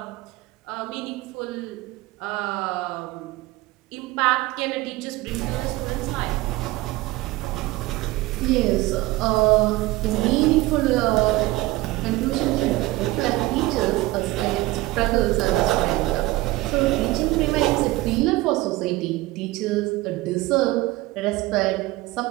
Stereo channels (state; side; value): quieter; left; 19.1 dB